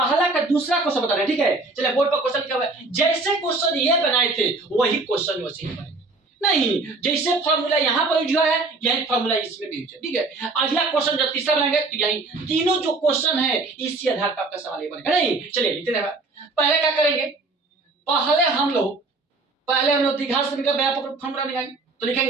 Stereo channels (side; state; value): left; quieter; 3.4 dB